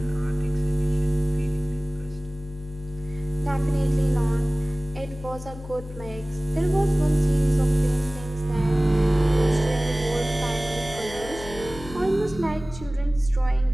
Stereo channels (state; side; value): noise; left; hum, 13 dB below the sound